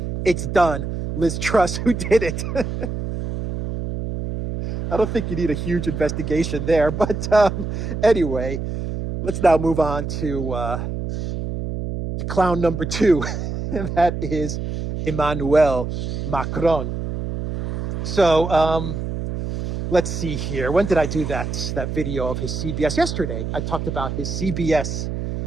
It's done. Liz Truss, who did it? I don't think you need a huge investigation there. But anyway, let's now move on to clown number 2, and that is Emmanuel Macron. So let's see here. When did I do that video of his CBS? Yesterday, I talked about his CBS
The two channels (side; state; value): right; noise; hum, 4 dB below the sound